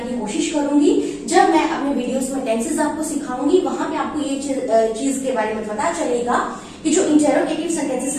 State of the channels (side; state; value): both; identical; correlation 1.00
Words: की कोशिश करूंगी। जब मैं अपने वीडियोस में टेंसेस आपको सिखाऊंगी वहां पे आपको ये चीज के बारे में पता चलेगा कि जो इंटेरोगेटिव सेंटेंसेस